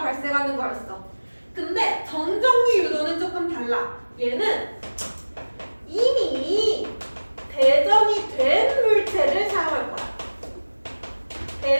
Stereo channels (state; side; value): inverted; both; correlation -1.00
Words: 근데 정전기 유도는 조금 달라. 얘는 이미 대전이 된 물체를 사용할 거야.